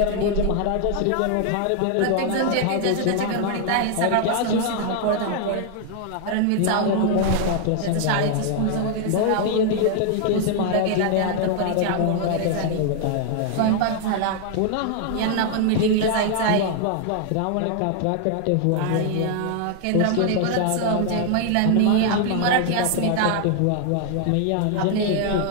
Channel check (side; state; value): both; different; correlation 0.00